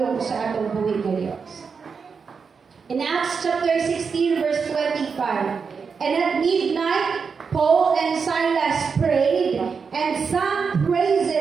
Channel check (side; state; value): left; quieter; 5.6 dB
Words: sa atong buhay nga Dios. In Acts chapter 16 verse 25, and at midnight Paul and Silas prayed and sang